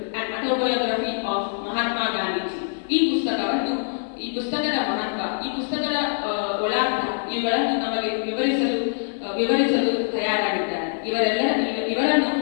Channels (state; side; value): silent; right; 58 dB below the other